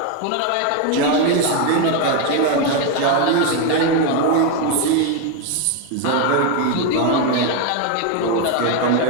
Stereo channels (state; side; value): different; both; correlation 0.01